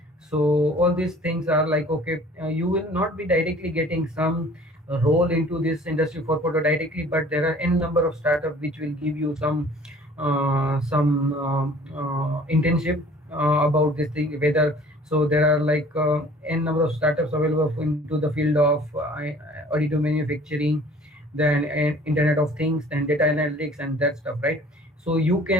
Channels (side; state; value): both; normal; correlation 0.51